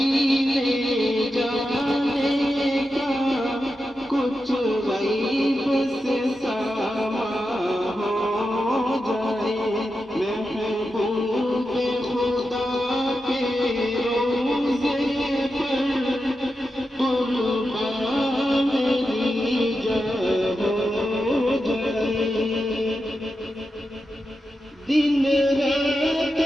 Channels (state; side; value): normal; both; correlation 0.89